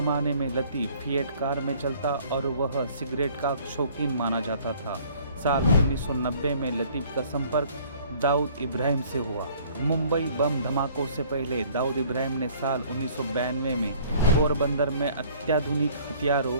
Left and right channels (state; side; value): inverted; both; correlation -0.55